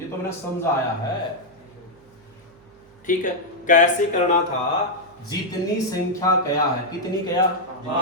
तो मैंने समझाया है। ठीक है, कैसे करना था? जितनी संख्या क्या है, कितनी क्या?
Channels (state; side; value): noise; right; hum, 29 dB below the sound